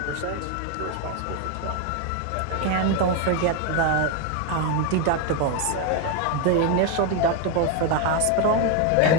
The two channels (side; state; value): both; different; correlation 0.01